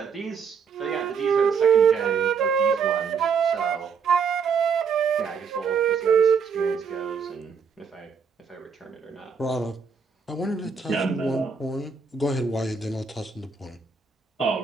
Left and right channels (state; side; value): quieter; left; 5.9 dB